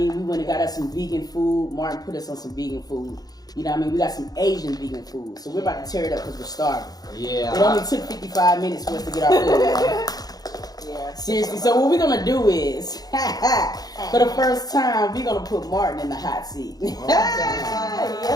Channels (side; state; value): right; late; 0.19 ms